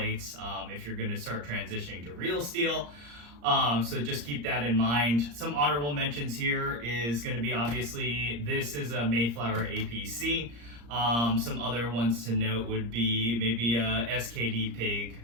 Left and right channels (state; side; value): late; left; 34 ms